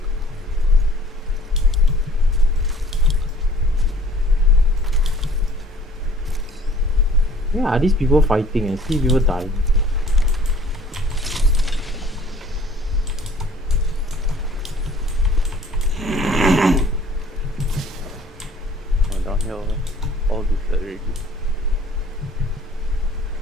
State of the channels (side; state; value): both; normal; correlation 0.53